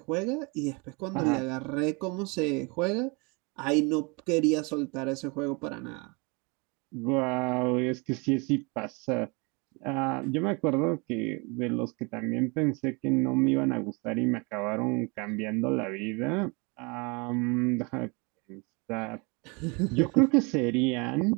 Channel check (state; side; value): quieter; left; 29.9 dB